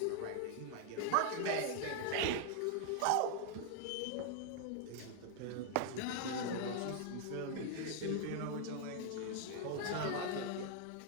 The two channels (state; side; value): different; both; correlation 0.00